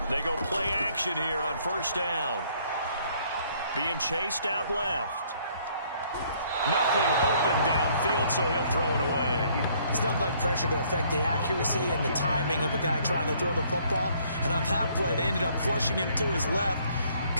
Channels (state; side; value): inverted; both; correlation -0.63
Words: They go play action here on first down. Being chased out left. Nothing open downfield, so he'll throw it away. It's nothing like pressure to affect the accuracy and the timing of a guy trying to throw the football. And on that play, they ended up flushing him to his left,